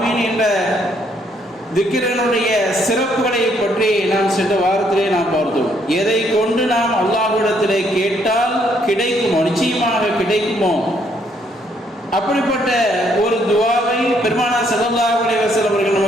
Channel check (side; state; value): both; normal; correlation 0.70